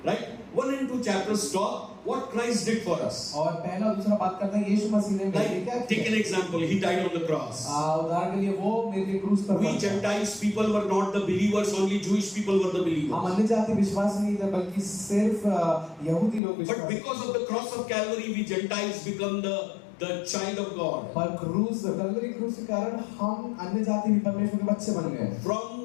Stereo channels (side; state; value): right; drops out; at 16.4 s